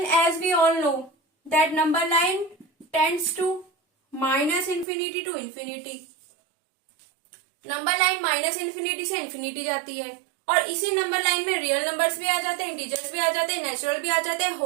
as we all know that number line tends to minus infinity to infinity. Number line minus infinity से इन्फिनिटी जाती है और इसी नंबर लाइन में रियल नंबर्स भी आ जाते हैं, इंटीजर्स भी आ जाते हैं, नेचुरल भी आ जाते हैं,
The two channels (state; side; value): drops out; left; at 4.9 s